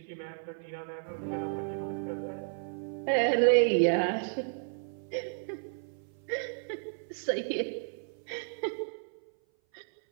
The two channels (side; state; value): left; silent; 56 dB below the other